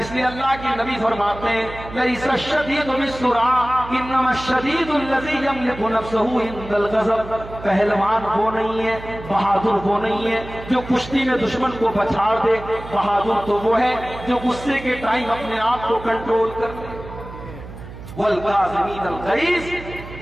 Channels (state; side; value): noise; right; hum, 13 dB below the sound